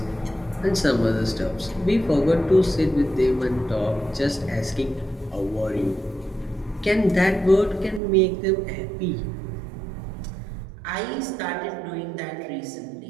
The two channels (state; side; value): drops out; left; at 8.0 s